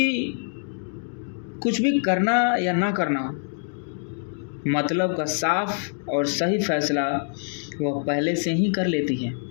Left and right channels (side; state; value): right; silent; 62 dB below the other